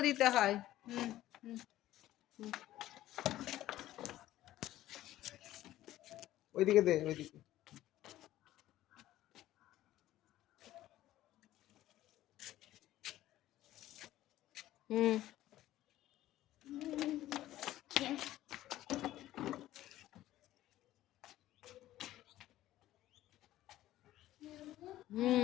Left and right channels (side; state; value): right; quieter; 14.4 dB